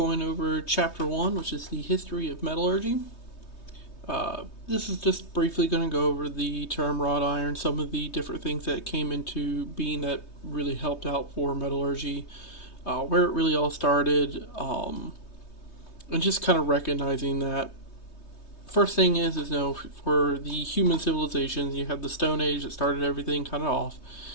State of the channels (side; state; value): right; late; 3.2 ms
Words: over Chapter 1, which is the history of metallurgy. This is just briefly going to go over the term wrought iron, some of the different things that came into being that really helped out for metallurgy, where it really all started, and just kind of recognizing that. First thing is for the human civilizations, you have the Stone Age that started everything kind of off,